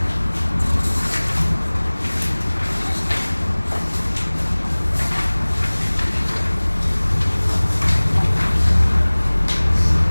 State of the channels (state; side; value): inverted; both; correlation -1.00